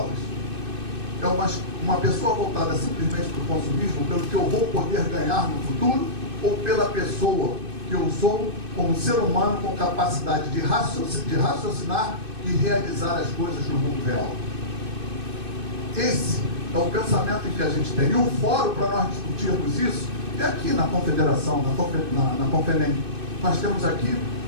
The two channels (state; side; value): late; left; 2.6 ms